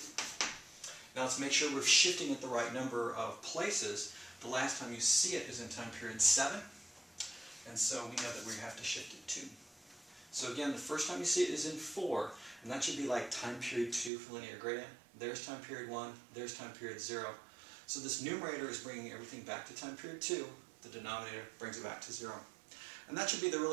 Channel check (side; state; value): left; drops out; at 14.1 s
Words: Now let's make sure we're shifting it the right number of places. The last time you see it is in time period 7, and so we know that we have to shift it 2. So again, the first time you see it is in 4, and that should be like time period 2 for linear gradient. There's time period 1, there's time period 0. So this numerator is bringing everything back to time period 2. The denominator brings it back to 0. And that should be the